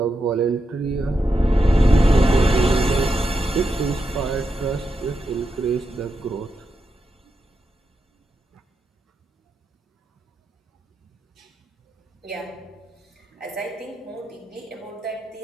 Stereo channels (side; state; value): both; normal; correlation 0.86